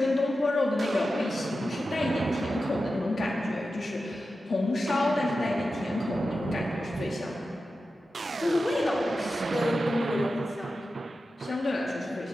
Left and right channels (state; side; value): normal; both; correlation 0.92